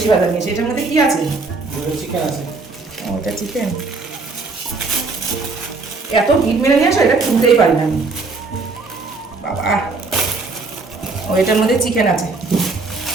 বাজার নিয়ে আসে। এটার মধ্যে কি আছে? চিকেন আছে। ওটা চিকেন। এত ভিড় মেরে নিয়ে আসো, এটা খুলতেই পারি না আমি বাবা। ও এটার মধ্যে চিকেন আছে।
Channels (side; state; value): left; quieter; 3.9 dB